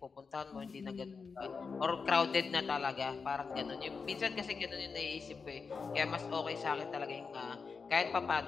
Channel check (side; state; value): right; quieter; 5.1 dB